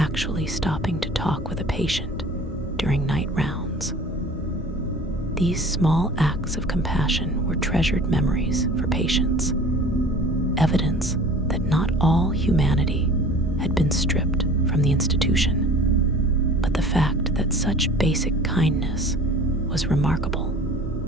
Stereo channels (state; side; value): normal; both; correlation 0.44